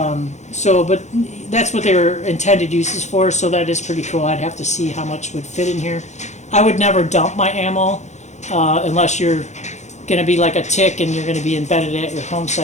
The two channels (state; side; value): late; right; 0.33 ms